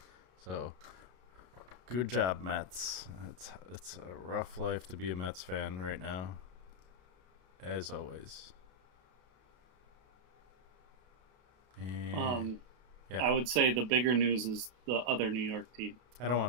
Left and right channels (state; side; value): late; left; 32 ms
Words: So good job, Mets. It's a rough life to be a Mets fan right now, as always. And, yeah. I would say the bigger news is the other New York team. I don't